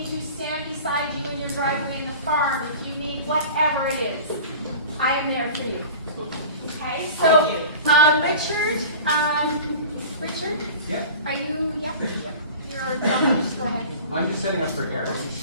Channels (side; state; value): both; inverted; correlation -0.39